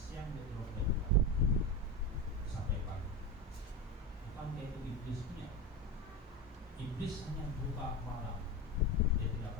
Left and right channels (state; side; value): normal; both; correlation 0.21